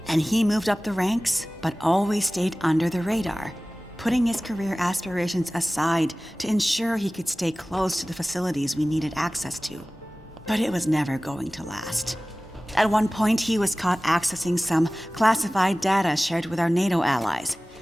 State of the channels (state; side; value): normal; both; correlation 0.98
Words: And he moved up the ranks, but always stayed under the radar, putting his career aspirations aside to ensure he could stay close to the facilities we needed access to. But it was never going to last. At one point, he was caught accessing some classified data shared with our NATO allies,